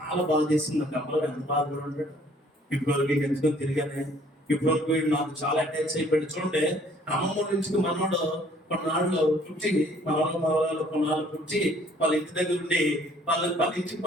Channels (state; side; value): normal; both; correlation 0.59